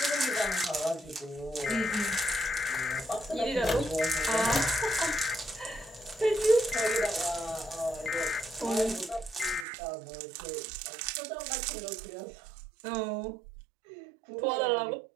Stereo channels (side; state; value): left; drops out; at 9.7 s